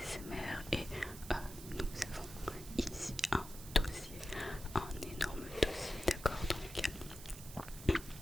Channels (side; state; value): right; noise; hiss, 14 dB below the sound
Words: et nous avons ici un dossier, un énorme dossier, d'accord, donc